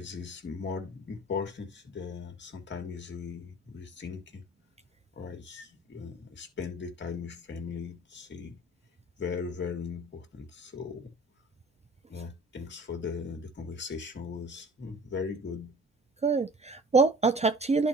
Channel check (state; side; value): normal; both; correlation 0.46